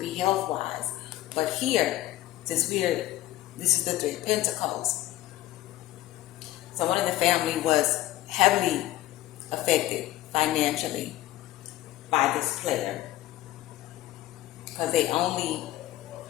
be health-wise. But here, since this is the Three of Pentacles, someone in the family was heavily affected financially by this player because they only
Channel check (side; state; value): right; quieter; 15.1 dB